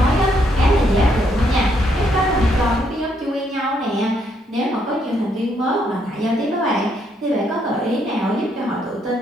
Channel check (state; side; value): normal; both; correlation 0.73